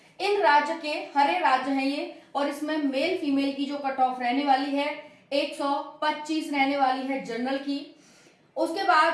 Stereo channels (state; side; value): identical; both; correlation 1.00